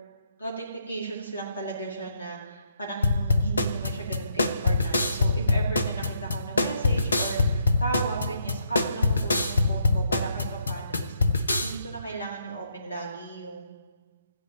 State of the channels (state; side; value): inverted; both; correlation -0.75